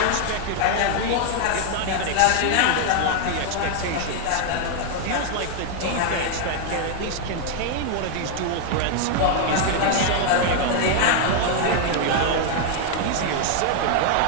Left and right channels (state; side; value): different; both; correlation 0.00